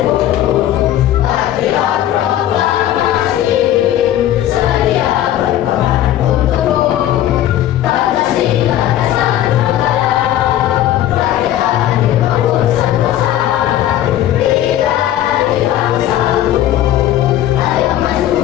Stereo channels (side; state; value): right; quieter; 12.5 dB